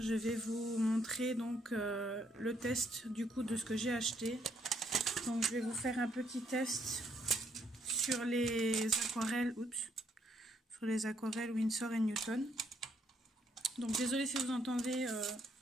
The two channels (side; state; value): both; normal; correlation 0.71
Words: je vais vous montrer donc le test du coup de ce que j'ai acheté. Donc je vais vous faire un petit test sur les aquarelles, sur les aquarelles Winsor & Newton. Donc désolé si vous entendez